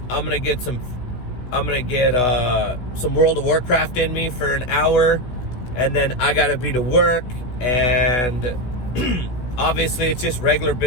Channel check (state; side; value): late; right; 16 ms